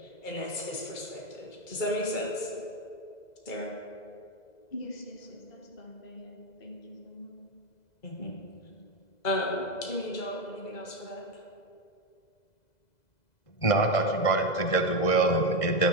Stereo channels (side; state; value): right; late; 2.0 ms